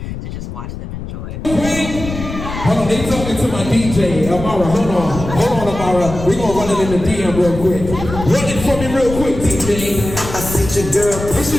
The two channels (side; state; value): left; noise; rumble, 8 dB below the sound